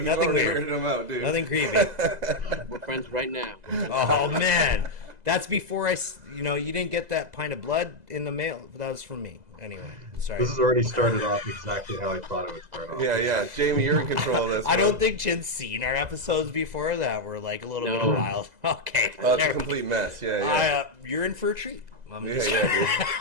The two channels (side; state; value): left; late; 2.0 ms